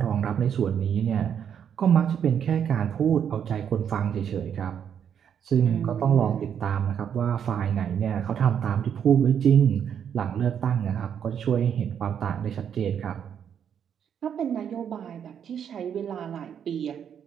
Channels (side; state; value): left; quieter; 8.4 dB